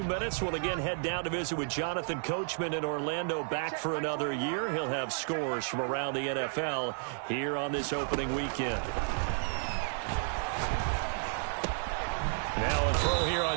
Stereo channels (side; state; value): left; silent; 56 dB below the other